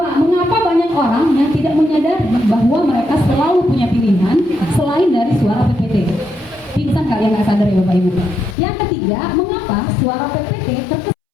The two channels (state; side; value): drops out; right; at 8.6 s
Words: banyak orang yang tidak menyadari bahwa mereka selalu punya pilihan selain dari suara PPT? Pingsan nggak yang nggak sadar ya Bapak Ibu? Yang ketiga, mengapa suara PPT terkesan